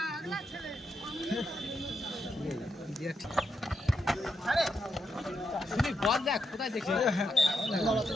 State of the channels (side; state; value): both; normal; correlation 0.82